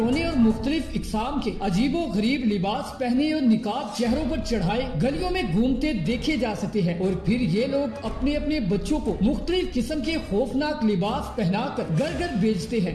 اور مختلف اقسام کے عجیب و غریب لباس پہنے اور نقاب چہروں پر چڑھائے گلیوں میں گھومتے دیکھے جا سکتے ہیں، اور پھر یہ لوگ اپنے اپنے بچوں کو مختلف قسم کے خوفناک لباس پہنا کر گھر گھر بیچتے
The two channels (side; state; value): both; identical; correlation 1.00